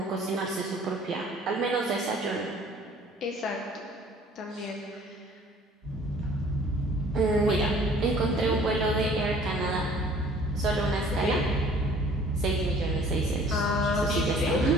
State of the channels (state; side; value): normal; both; correlation 0.53